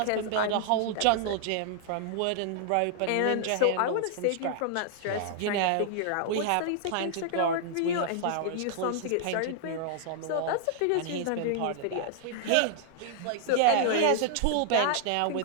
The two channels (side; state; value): both; different; correlation -0.01